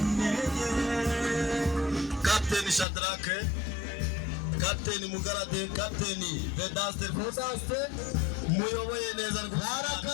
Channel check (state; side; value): drops out; right; at 2.9 s